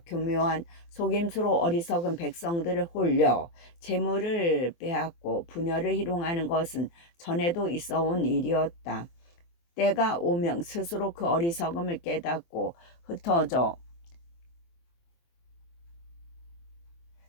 교묘한 속임수로 어리석은 백성들을 홀려 재물을 빼앗고 분열을 희롱하는 것은 전에도 있어온 일이었다. 때가 오면 스스로 그 어리석음을 깨닫고 흩어져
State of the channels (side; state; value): right; late; 24 ms